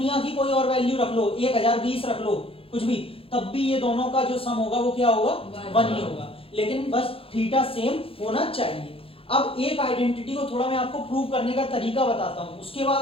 की कोई और वैल्यू रख लो, 1020 रख लो, कुछ भी, तब भी ये दोनों का जो सम होगा वो क्या होगा, 1 ही होगा। लेकिन बस थीटा सेम होना चाहिए। अब एक आइडेंटिटी को थोड़ा मैं आपको प्रूव करने का तरीका बताता हूं, उसके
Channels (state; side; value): late; right; 0.27 ms